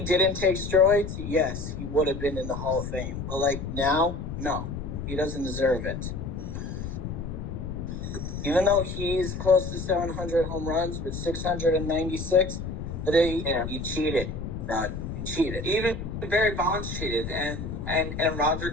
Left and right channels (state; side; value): noise; left; rumble, 6 dB below the sound